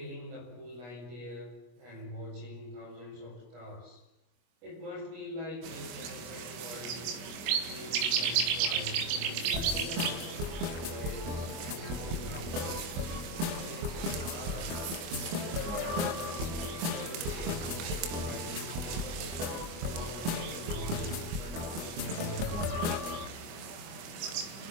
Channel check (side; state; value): left; late; 25 ms